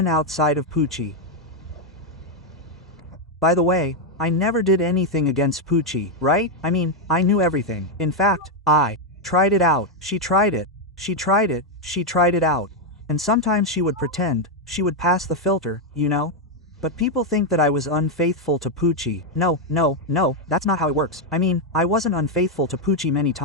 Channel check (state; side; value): normal; both; correlation 0.02